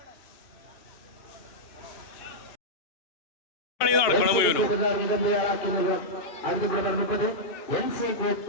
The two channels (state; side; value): late; right; 2.9 ms